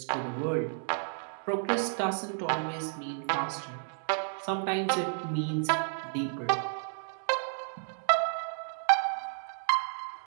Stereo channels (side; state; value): left; silent; digital silence